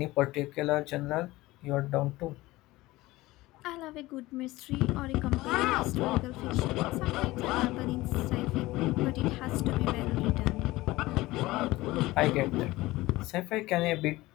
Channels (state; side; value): quieter; right; 19.0 dB